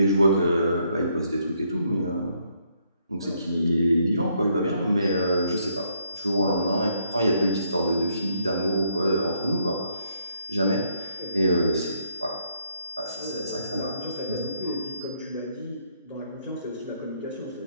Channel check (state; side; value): inverted; both; correlation -0.72